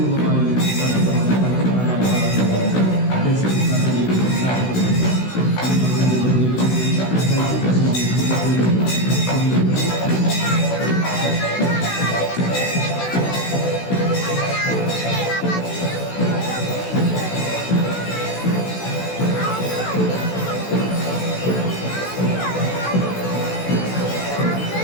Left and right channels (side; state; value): right; late; 16 ms